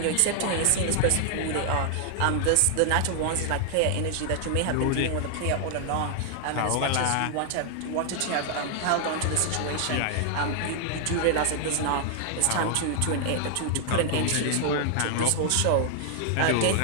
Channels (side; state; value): both; different; correlation 0.00